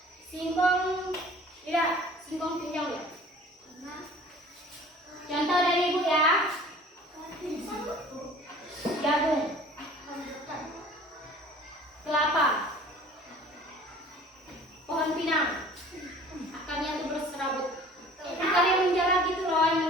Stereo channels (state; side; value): normal; both; correlation 0.48